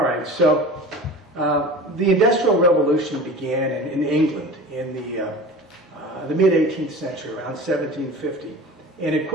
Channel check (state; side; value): normal; both; correlation 0.36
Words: right, so the Industrial Revolution began in England in the mid-18th century, around 1750. And it